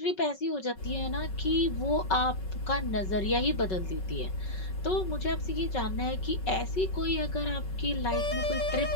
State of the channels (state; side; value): late; right; 5.3 ms